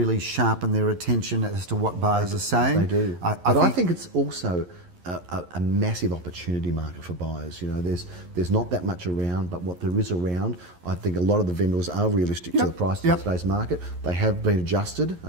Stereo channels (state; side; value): late; left; 11 ms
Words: sharpen their attention as to what buyers are saying. They do. I think it's also a massive opportunity market for buyers. You know, there's not that much around, but what there is around, I think a lot of the vendors are realistic to the price in today's market. They have been adjusted